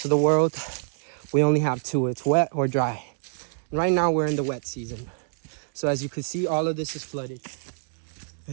of the world. We only have 2. It's wet or dry. And right now we're in the wet season. So as you can see, all of this is flooded.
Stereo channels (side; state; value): left; silent; digital silence